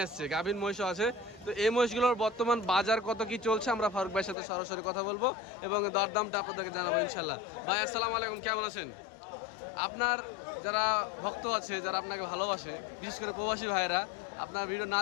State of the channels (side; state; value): right; drops out; at 4.4 s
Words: আসছে, গাভীন মহিষও আছে। তো এই মহিষগুলোর বর্তমান বাজার কত কি চলছে আমরা ফারুক ভাইয়ের সাথে সরাসরি কথা বলবো এবং দরদামটা আপনাদেরকে জানাবো ইনশাল্লাহ। ভাই আসসালামু আলাইকুম, কেমন আছেন? আপনার যারা ভক্ত আছে, যারা আপনাকে ভালোবাসে, বিশেষ করে প্রবাসী ভাইয়েরা, আপনার ভিডিও না